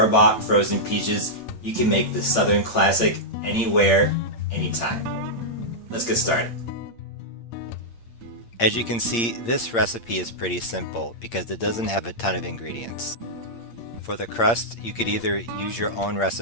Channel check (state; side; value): late; right; 8.6 ms